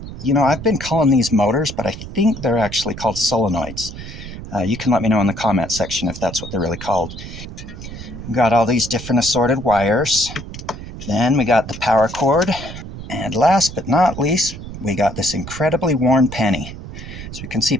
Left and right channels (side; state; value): right; noise; rumble, 11 dB below the sound